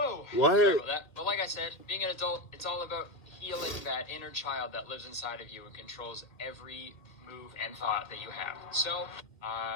What? Sorry about that. But like I said, being an adult, it's all about healing that inner child that lives inside of you and controls every move and thought that you have. So,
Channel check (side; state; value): right; late; 1.9 ms